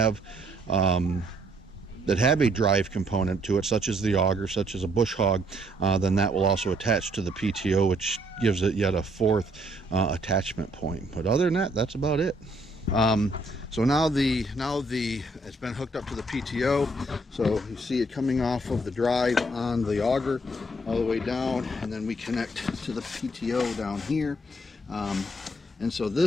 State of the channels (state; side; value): normal; both; correlation 0.68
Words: a drive component to it, such as the auger, such as a bush hog, then that will also attach to the PTO, which gives it yet a fourth attachment point. But other than that, that's about it. So now it's been hooked up to the PTO. So you see it coming off of the drive on the auger all the way down, and then we connect to the PTO down here. And so